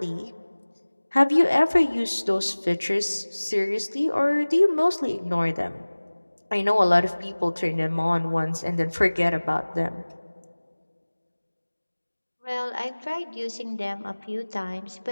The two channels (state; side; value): inverted; both; correlation -1.00